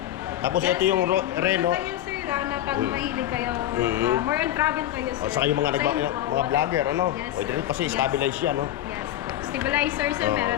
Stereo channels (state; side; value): quieter; right; 12.9 dB